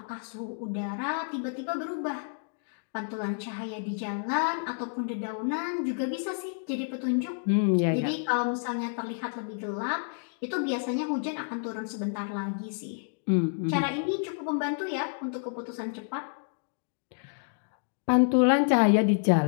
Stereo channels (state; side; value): silent; right; digital silence